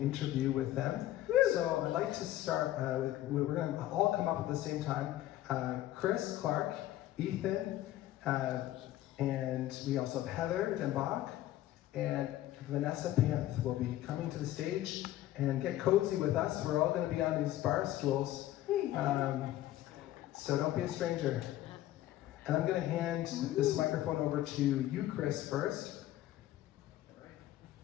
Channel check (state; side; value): quieter; right; 14.2 dB